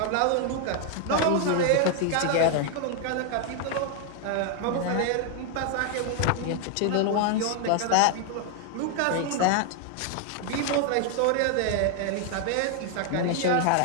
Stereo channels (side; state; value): both; different; correlation 0.00